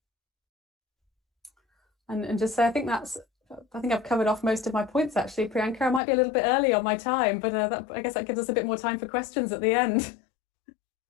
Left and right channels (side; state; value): right; drops out; at 6.0 s